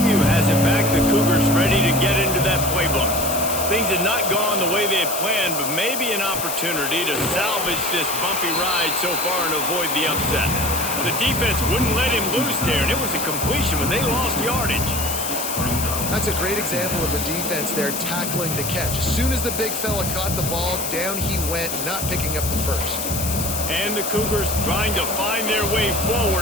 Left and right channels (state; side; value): noise; left; hiss, 4 dB below the sound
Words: has it back. The Cougars ready to get into that playbook. Things had not gone the way they had planned, but maybe an opportunity to salvage this bumpy ride so far and avoid the upset. The defense wouldn't let him loose there, and it was a completion when they lost yardage. That's a great example of the defense there tackling the catch. As soon as the big fella caught the ball, down he went, not picking up the first. And the Cougars trying to find their way